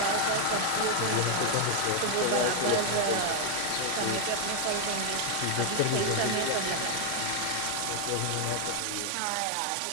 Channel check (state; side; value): different; both; correlation 0.00